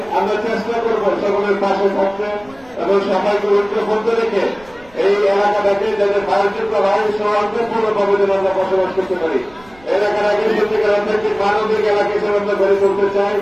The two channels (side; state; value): right; noise; rumble, 25 dB below the sound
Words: আমরা চেষ্টা করবো সকলের পাশে থাকতে এবং সবাইকে ঐক্যবদ্ধ রেখে এই এলাকাটাকে যাতে ভারতীয় ভাই সৌহার্দ্যপূর্ণভাবে যেন আমরা বসবাস করতে পারি। এলাকাটাকে সত্যিকার অর্থে মানবিক এলাকা হিসেবে আমরা গড়ে তুলতে চাই,